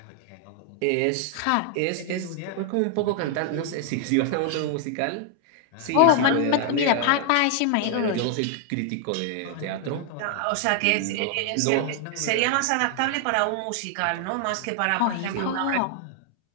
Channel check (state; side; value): different; both; correlation 0.00